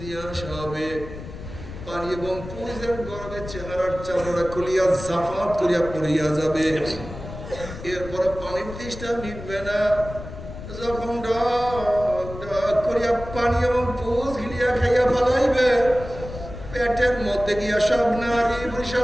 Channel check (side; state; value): left; noise; rumble, 12 dB below the sound